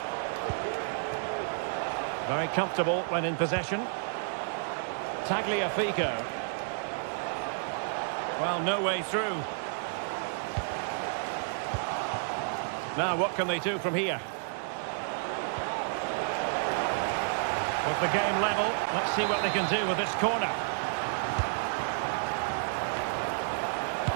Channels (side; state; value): left; silent; digital silence